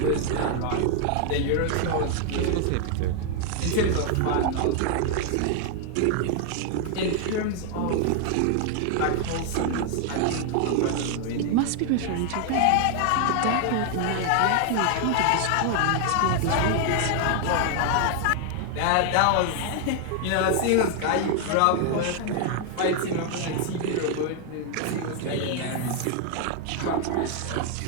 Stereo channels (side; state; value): both; different; correlation 0.00